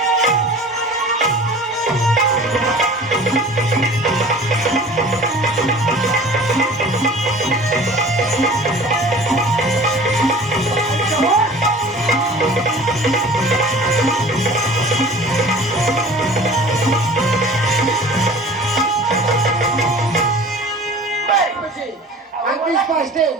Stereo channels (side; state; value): both; normal; correlation 0.43